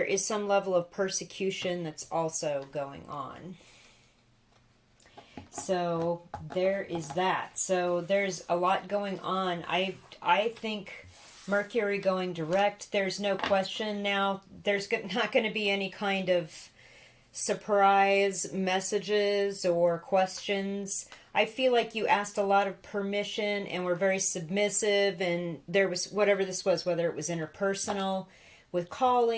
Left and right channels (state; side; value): identical; both; correlation 1.00